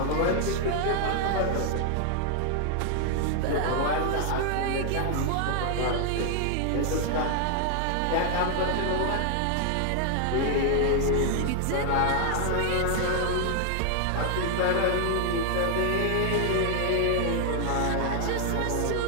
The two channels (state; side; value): different; both; correlation 0.00